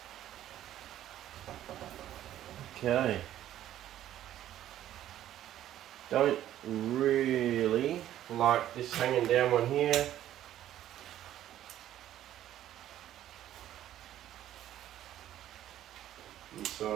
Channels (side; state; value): left; quieter; 12.3 dB